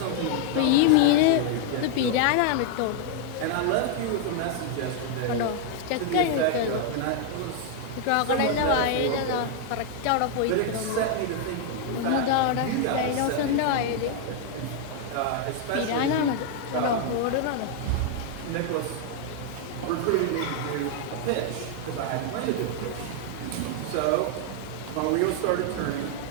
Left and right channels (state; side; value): different; both; correlation 0.00